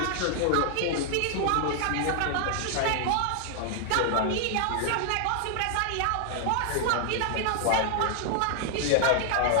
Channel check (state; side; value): different; both; correlation 0.00